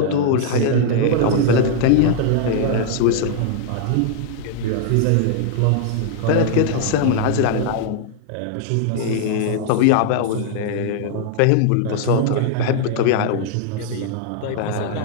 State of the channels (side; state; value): both; different; correlation 0.00